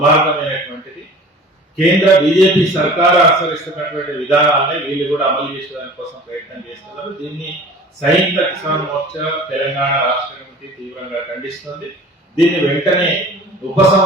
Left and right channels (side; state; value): both; normal; correlation 0.43